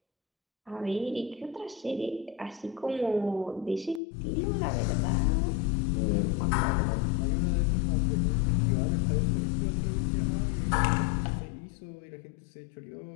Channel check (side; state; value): right; drops out; at 4.0 s